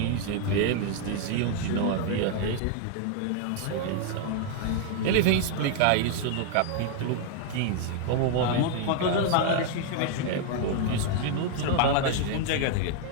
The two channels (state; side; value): different; both; correlation 0.00